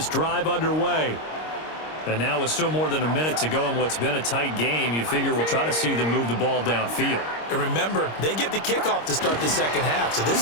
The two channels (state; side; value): late; right; 26 ms